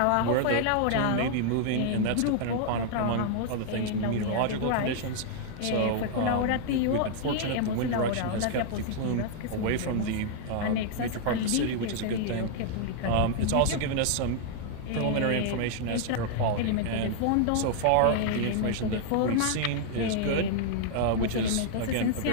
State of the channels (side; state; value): both; different; correlation -0.01